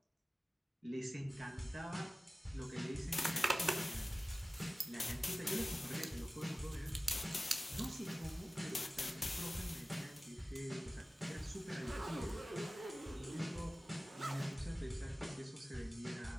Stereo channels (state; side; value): normal; both; correlation 0.97